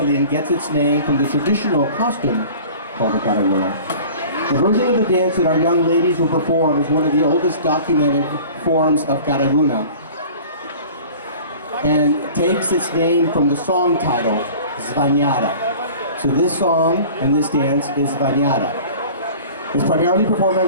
and gets its name from the traditional costume called the Karaguna. The version of the dance that our young ladies will perform is one of the oldest documented forms of Karaguna and takes its name from the song title, Zvanyata. So this song and this dance is Zvanyata. It's primarily performed by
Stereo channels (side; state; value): both; inverted; correlation -0.43